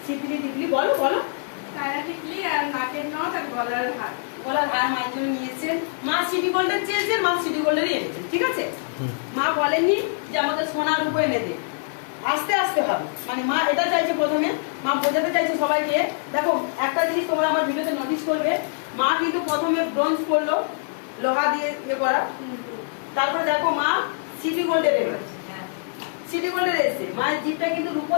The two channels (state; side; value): silent; right; 59 dB below the other